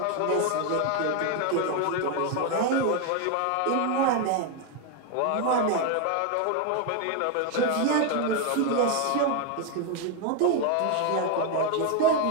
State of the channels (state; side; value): different; both; correlation 0.01